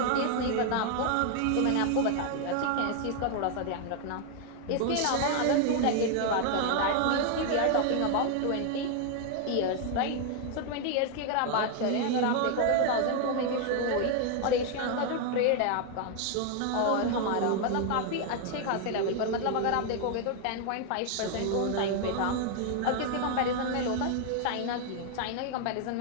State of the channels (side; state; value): both; different; correlation 0.00